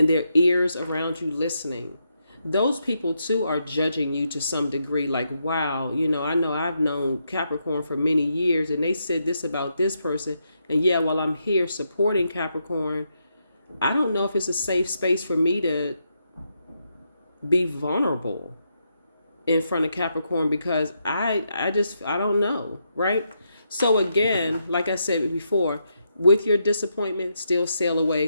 their ears around you listening. Those people too are judging you to some degree, like, wow, I know I've known Capricorn for many years and they said this about this person. And yeah, while I'm here supporting Capricorn, I don't know if it's a safe space for me to be vulnerable in front of Capricorn, because I don't know, right? So again, like I said before, with your disappointment, still sail away,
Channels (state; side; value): inverted; both; correlation -0.81